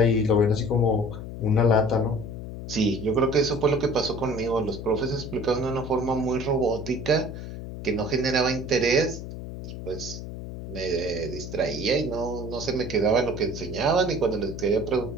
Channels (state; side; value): noise; left; hum, 9 dB below the sound